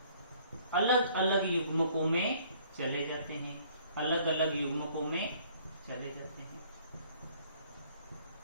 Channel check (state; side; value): inverted; both; correlation -0.58